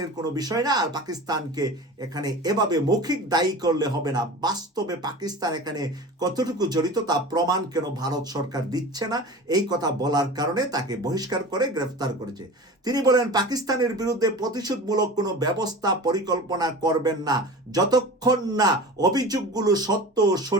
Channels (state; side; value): normal; both; correlation 0.35